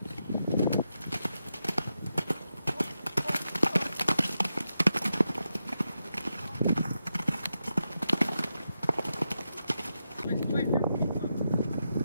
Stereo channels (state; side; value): inverted; both; correlation -0.87